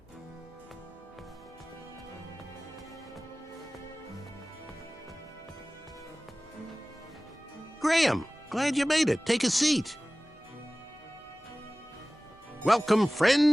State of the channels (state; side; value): normal; both; correlation 0.98